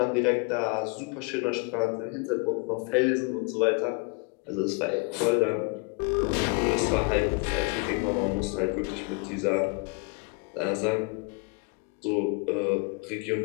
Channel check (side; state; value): right; quieter; 30.9 dB